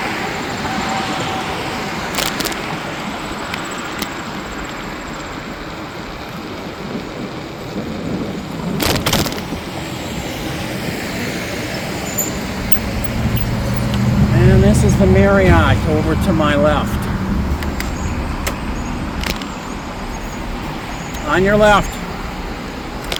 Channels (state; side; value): identical; both; correlation 1.00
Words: This is the Marriott over to my left. On your left.